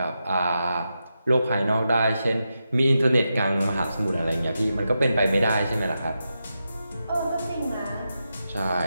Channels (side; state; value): both; inverted; correlation -0.88